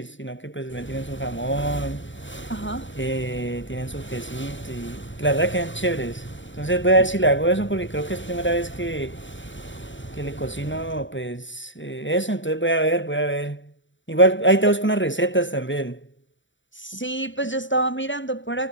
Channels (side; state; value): right; late; 0.55 ms